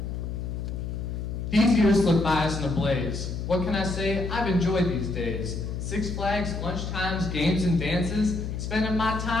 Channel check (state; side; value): noise; left; hum, 5 dB below the sound